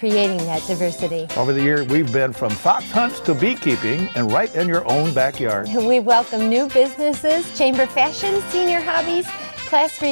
that diversity. Over the years, we've been from fox hunts to beekeeping and right in your own backyard. We welcome new businesses, chamber fashion, senior hobbies, class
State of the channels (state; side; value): inverted; both; correlation -1.00